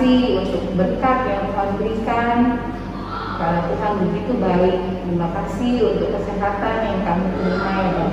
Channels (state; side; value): identical; both; correlation 1.00